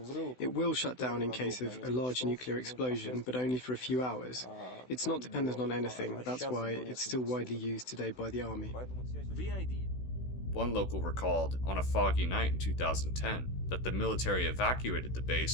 It will shut down in case of a large nuclear explosion, but only for a few hours. It's not dependent on anything. That's why it's still widely used today by the army. One local recalled, on a foggy night in 2010, that the military evacuated the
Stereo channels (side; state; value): right; late; 16 ms